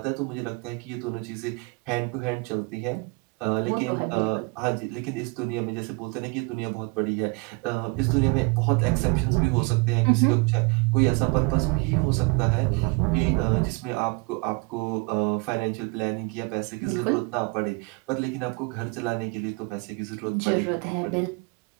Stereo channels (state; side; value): quieter; left; 30.1 dB